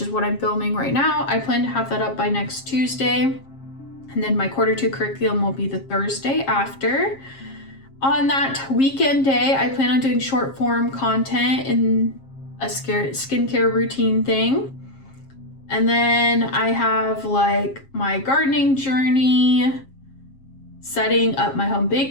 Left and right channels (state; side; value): late; right; 7.4 ms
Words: what I'm filming right now, I plan to have that up by next Tuesday. And then my quarter 2 curriculum will be the Thursday after. On that weekend day, I plan on doing short form content in a skincare routine thing. And then I have like my gardening journey, setting up my home